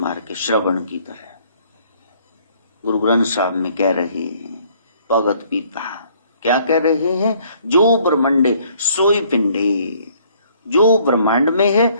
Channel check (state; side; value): inverted; both; correlation -0.61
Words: के श्रवण की तरह। गुरु ग्रंथ साहब में कह रहे हैं भगत पिता, क्या कह रहे हैं, जो ब्रह्मंडे सोई पिंडे, जो ब्रह्मांड में है